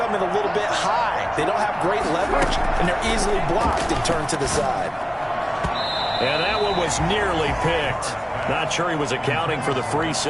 in a little bit high. They don't have great leverage, and they're easily blocked and turned to the side. And that one was nearly picked. Not sure he was accounting for the free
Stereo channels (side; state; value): both; identical; correlation 1.00